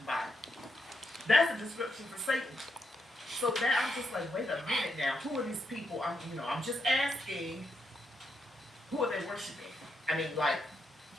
Bible. That's a description for Satan. So that I'm just like, wait a minute now. Who are these people? I'm just asking, who are they worshiping? I mean, like,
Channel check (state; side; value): normal; both; correlation 0.81